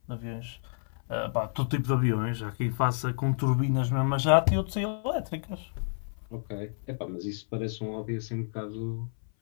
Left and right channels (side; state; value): right; silent; 56 dB below the other